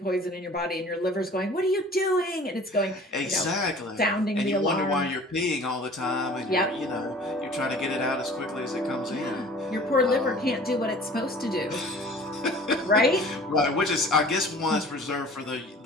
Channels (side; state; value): both; normal; correlation 0.47